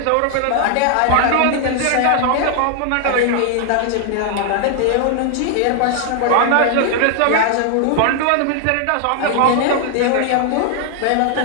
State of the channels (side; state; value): both; different; correlation 0.00